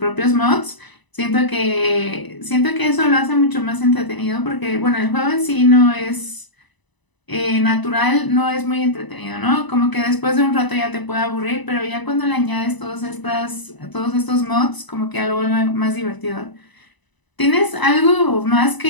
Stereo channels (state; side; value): late; right; 1.0 ms